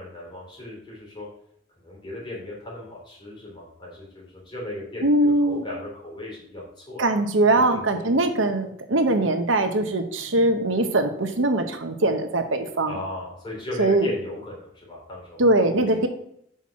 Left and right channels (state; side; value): normal; both; correlation 0.02